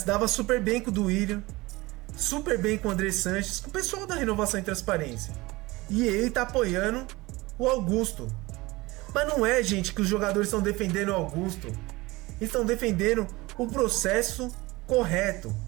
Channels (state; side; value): quieter; left; 21.6 dB